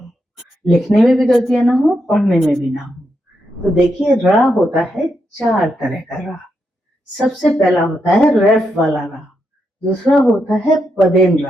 लिखने में भी गलतियां ना हो, पढ़ने में भी ना हो। तो देखिए, रा होता है 4 तरह का रा। सबसे पहला होता है रेफ वाला रा, दूसरा होता है पदेन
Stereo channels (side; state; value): both; normal; correlation 0.82